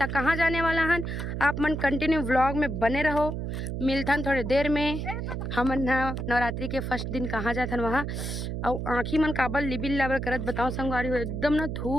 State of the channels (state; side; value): noise; right; hum, 4 dB below the sound